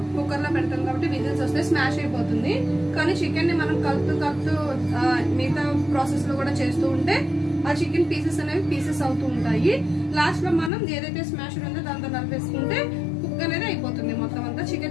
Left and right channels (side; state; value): right; drops out; at 10.7 s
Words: కుక్కర్ లో పెడతాం కాబట్టి విజిల్స్ వస్తే స్మాష్ అయిపోతుంది. కానీ చికెన్ ని మనం కలుపుతూ మిగతా ప్రాసెస్ లో కూడా చేస్తూ ఉంటే ఆ చికెన్ పీసెస్ అనేవి పీసెస్ అవుతూ ఉంటాయి. లాస్ట్ లో మనం ఏదైతే స్మాష్ ఉందో దాంతో కలిపేసుకుంటే కుక్ అనేది అయిపోతుంది, మొత్తం అంతా